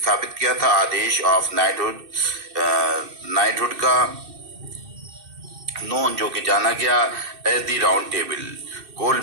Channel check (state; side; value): late; left; 2.6 ms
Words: किया था आदेश ऑफ नाइटहुड का, नोन जो कि जाना गया एज द राउंड टेबल,